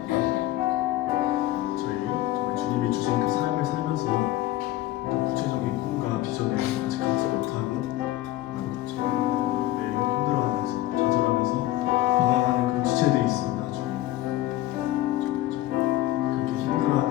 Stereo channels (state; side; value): quieter; right; 15.6 dB